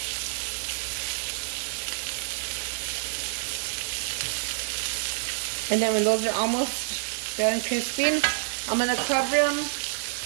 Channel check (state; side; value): silent; left; digital silence